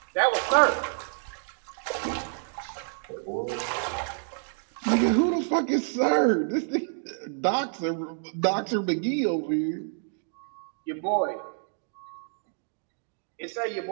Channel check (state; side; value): silent; left; digital silence